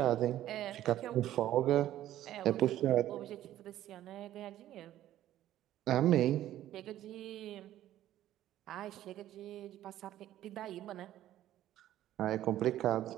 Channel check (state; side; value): quieter; left; 13.1 dB